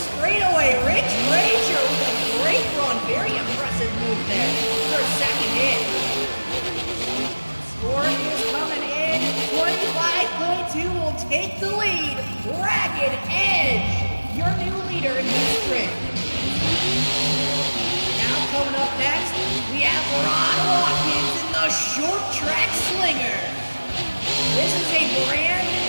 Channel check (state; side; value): inverted; both; correlation -1.00